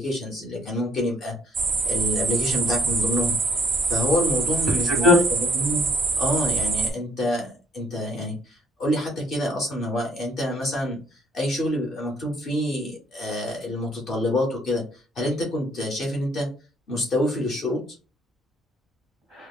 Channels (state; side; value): normal; both; correlation 0.63